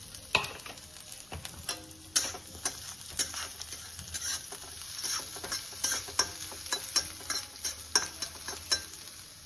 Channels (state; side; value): noise; right; rumble, 25 dB below the sound